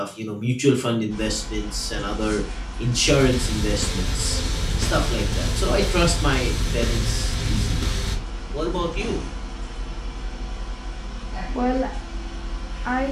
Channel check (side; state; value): both; identical; correlation 1.00